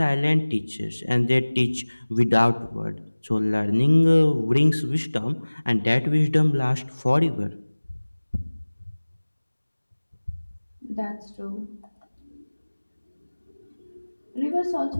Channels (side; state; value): both; inverted; correlation -1.00